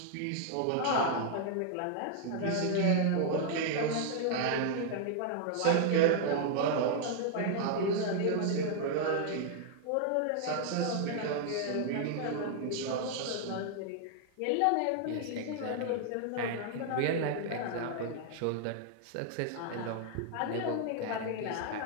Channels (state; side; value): different; both; correlation 0.00